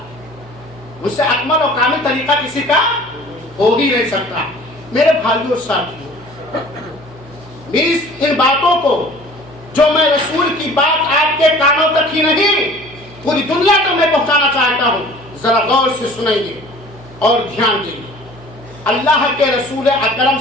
ان سے اکمل اور کامل طریقہ کسی کا ہو ہی نہیں سکتا. میرے بھائیوں ساتھیوں، ان باتوں کو جو میں رسول کی بات آپ کے کانوں تک ہی نہیں پوری دنیا تک میں پہنچانا چاہتا ہوں، ذرا غور سے سنیں اور دھیان دیں. اللہ کے رسول اکرم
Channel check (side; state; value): right; noise; hum, 23 dB below the sound